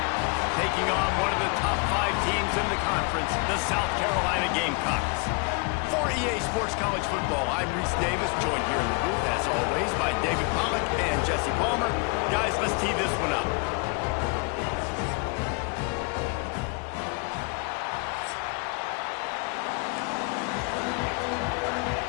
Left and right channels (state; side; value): quieter; right; 33.1 dB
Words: taking on one of the top 5 teams in the conference, the South Carolina Gamecocks. For EA Sports College Football, I'm Reese Davis, joined here in the booth, as always, by David Pollack and Jesse Palmer. Guys, let's tee this one up.